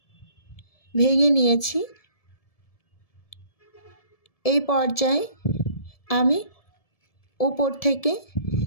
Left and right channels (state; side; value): late; right; 1.7 ms